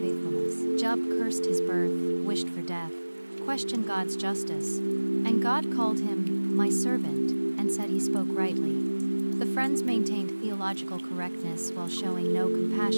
Job cursed his birth, wished for death, questioned God's justice, and God called him my servant and said he spoke rightly. The friends maintained theological correctness while showing no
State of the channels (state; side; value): inverted; both; correlation -1.00